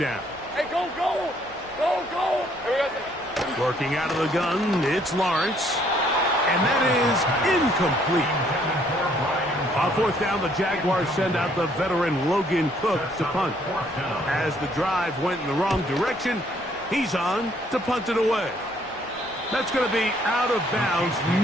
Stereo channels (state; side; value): normal; both; correlation 0.65